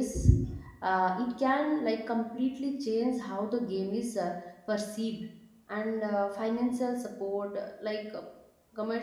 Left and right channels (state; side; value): identical; both; correlation 1.00